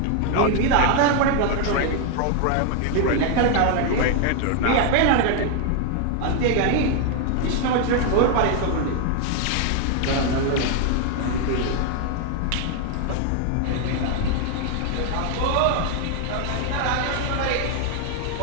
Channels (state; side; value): different; both; correlation 0.00